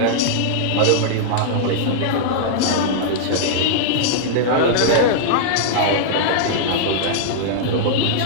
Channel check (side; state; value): both; different; correlation -0.02